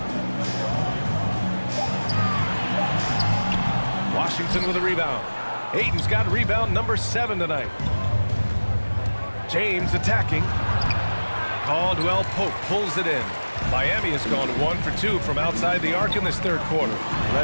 Washington with a rebound. Ayton's got rebound number 7 tonight. James attacking. Caldwell Pope pulls it in. Miami has gone 1 for 2 from outside the arc in this third quarter.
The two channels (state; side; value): inverted; both; correlation -1.00